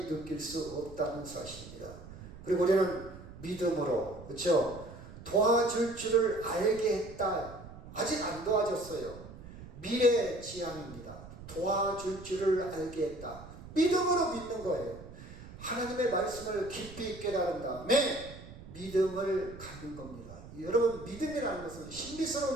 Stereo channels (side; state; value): right; noise; rumble, 15 dB below the sound